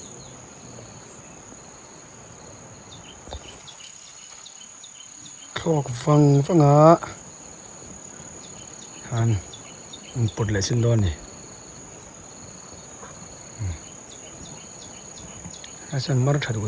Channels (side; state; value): both; identical; correlation 1.00